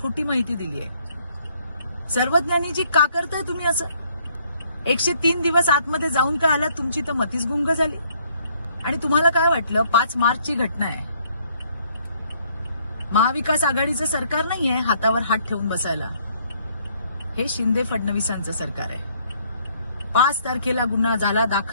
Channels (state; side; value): inverted; both; correlation -0.66